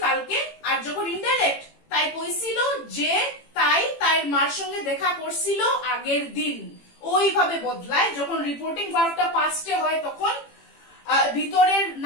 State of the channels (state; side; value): late; right; 18 ms